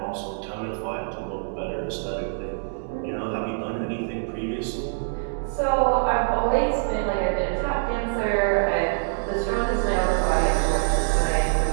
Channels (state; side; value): silent; left; digital silence